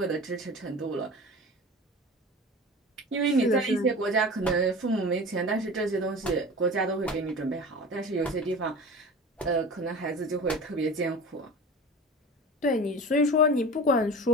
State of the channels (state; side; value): normal; both; correlation 0.35